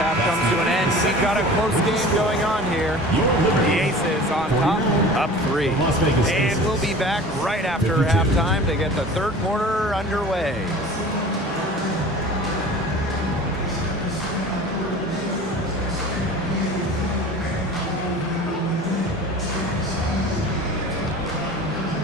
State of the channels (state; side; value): normal; both; correlation 0.40